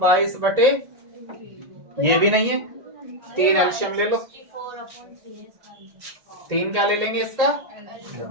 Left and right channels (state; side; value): late; left; 1.7 ms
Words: 22 बटे, ये भी नहीं है। 3 एलसीएम ले लो। 3 क्या ले लेंगे इसका?